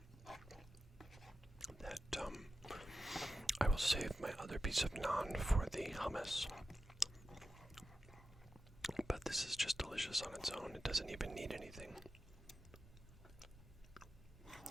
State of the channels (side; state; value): both; normal; correlation 0.91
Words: that I will save my other piece of naan for the hummus. But this is just delicious on its own. It doesn't even need anything.